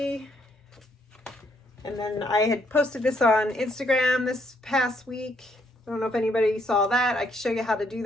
And then I had posted this on Instagram this past week. I don't know if anybody saw that. I can show you how to do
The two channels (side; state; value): both; normal; correlation 0.71